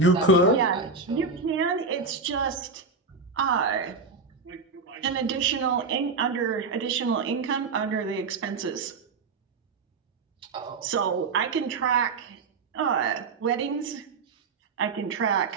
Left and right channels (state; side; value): quieter; left; 4.5 dB